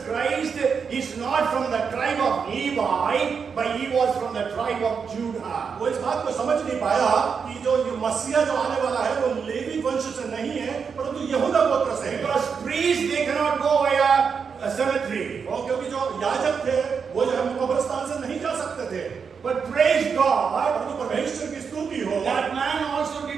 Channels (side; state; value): left; quieter; 6.1 dB